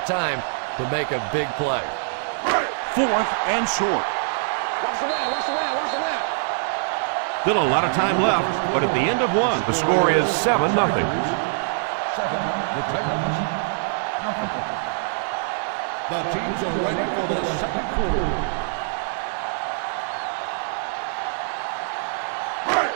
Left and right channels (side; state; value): left; silent; digital silence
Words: time to make a big play. 4th and short. Still a lot of time left, but at the end of one, the score is 7-0. 7, the Titans. The teams are ready for the second quarter.